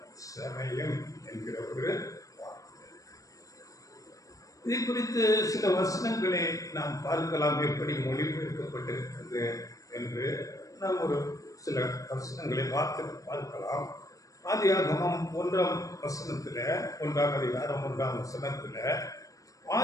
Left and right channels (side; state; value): right; late; 0.16 ms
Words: சமயம் என்கிற ஒரு வார்த்தை. இதை குறித்து சில வசனங்களை நாம் பார்க்கலாம், எப்படி மொழிபெயர்க்கப்பட்டிருக்கிறது என்று நாம் ஒரு சில வசனங்களை பார்க்கலாம். ஆதியாகமம் 1ஆம் வசனத்தில், 1ஆம் அதிகாரம் 1ஆம் வசனத்தில்,